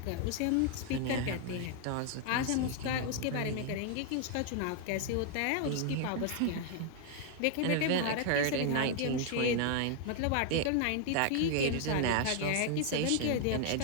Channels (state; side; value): different; both; correlation 0.00